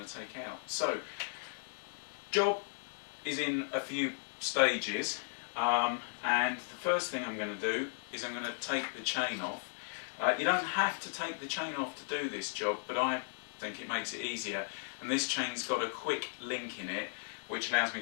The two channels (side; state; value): right; silent; 54 dB below the other